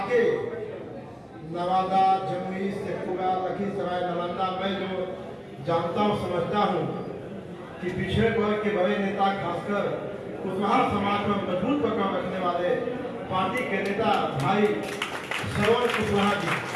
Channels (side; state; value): both; identical; correlation 1.00